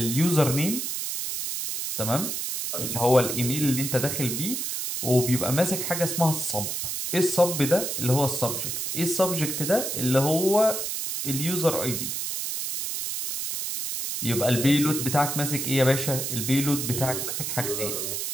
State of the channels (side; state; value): right; noise; hiss, 3 dB below the sound